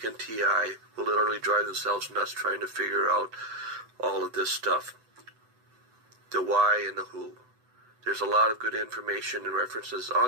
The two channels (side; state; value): left; late; 7.9 ms